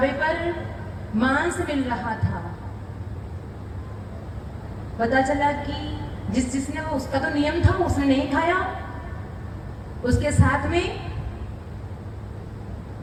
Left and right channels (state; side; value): identical; both; correlation 1.00